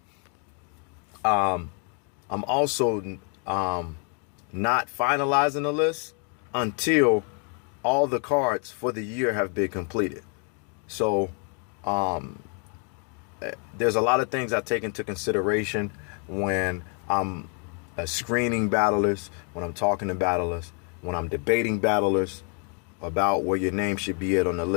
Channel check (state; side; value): quieter; right; 39.9 dB